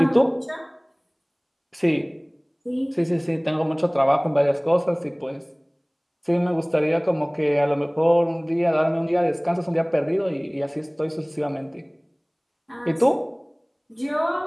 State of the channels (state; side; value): identical; both; correlation 1.00